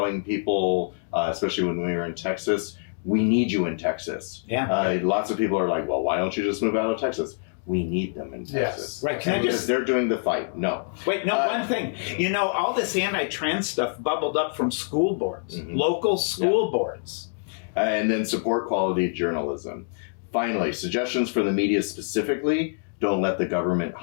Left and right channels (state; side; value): silent; right; digital silence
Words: people, especially when we were in Texas, we need you in Texas. Yeah. Lots of people are like, well, why don't you just move out of Texas? We need them in Texas. Right. Can I just... They're doing the fight. No. Wait, no, one thing. You know, all this anti-trans stuff bubbled up from school boards, local school boards. And then support quality journalism. Finally, suggestions for the media specifically. Don't let the government